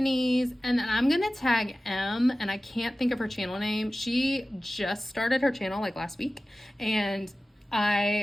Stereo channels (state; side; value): normal; both; correlation 0.96